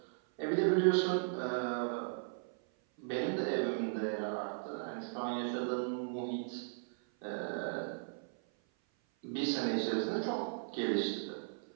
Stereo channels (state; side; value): silent; left; 53 dB below the other